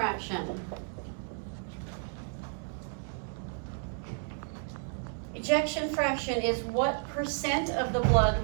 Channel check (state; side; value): silent; left; 56 dB below the other